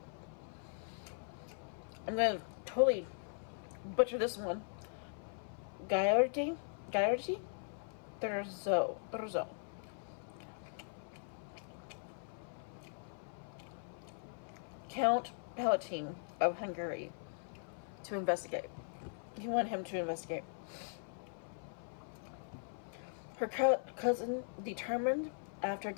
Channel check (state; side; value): silent; right; 51 dB below the other